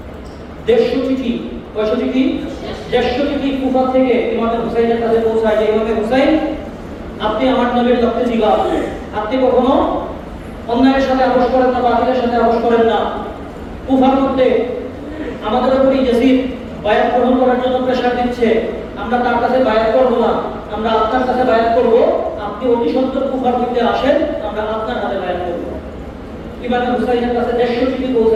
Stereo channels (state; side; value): identical; both; correlation 1.00